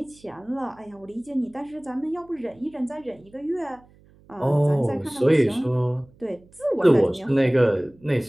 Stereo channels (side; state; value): right; noise; hum, 28 dB below the sound